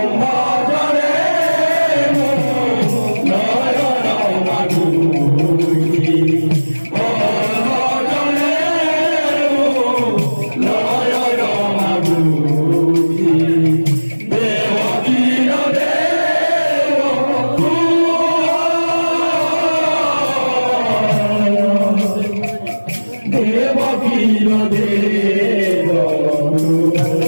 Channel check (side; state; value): both; inverted; correlation -1.00